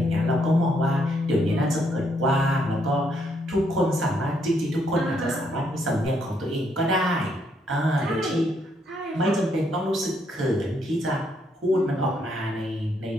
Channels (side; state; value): both; normal; correlation 0.73